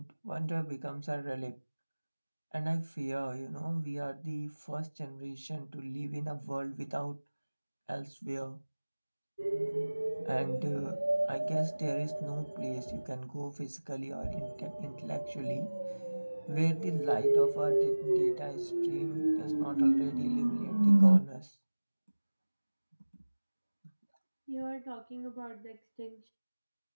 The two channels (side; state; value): both; inverted; correlation -1.00